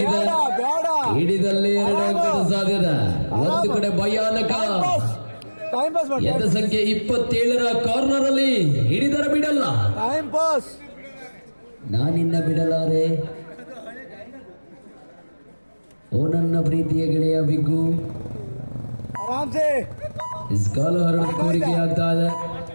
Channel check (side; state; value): both; inverted; correlation -1.00